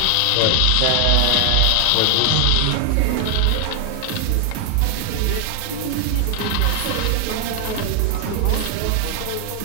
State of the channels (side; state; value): both; different; correlation 0.00